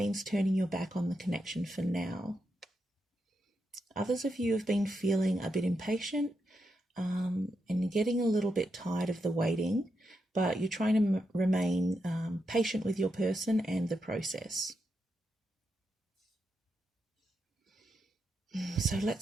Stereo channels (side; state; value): both; normal; correlation 0.84